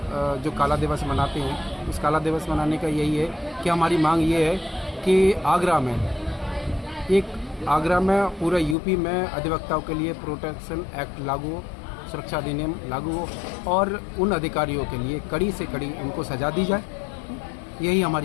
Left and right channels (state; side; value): drops out; right; at 8.8 s